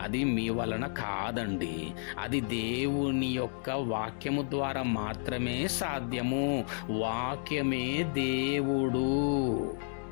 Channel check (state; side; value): silent; right; digital silence